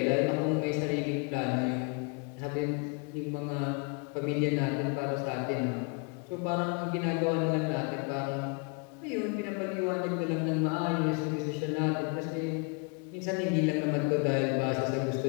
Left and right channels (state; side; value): quieter; right; 33.0 dB